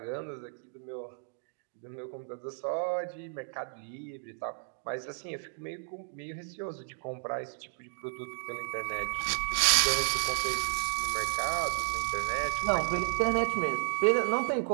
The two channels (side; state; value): left; silent; digital silence